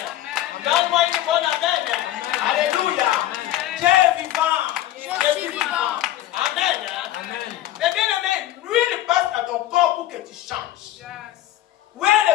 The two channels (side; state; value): right; quieter; 13.7 dB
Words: Donne-moi une bonne amen. Alléluia. Dieu est vivant. Dieu est vivant. Amen. Mais bien amen, l'huile passe dans ton corps pour que tu changes. Où est